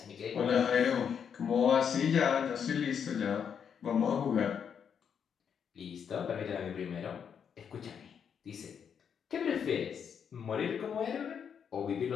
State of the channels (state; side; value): quieter; right; 7.5 dB